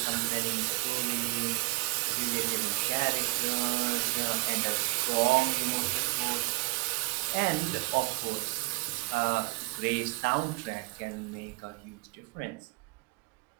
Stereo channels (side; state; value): left; quieter; 25.9 dB